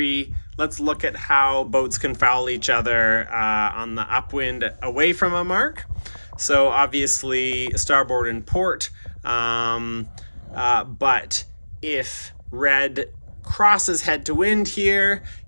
let's look at how boats can foul each other on the upwind away from a mark. So obviously starboard and port, but if red crosses head to wind here,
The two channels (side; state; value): both; inverted; correlation -1.00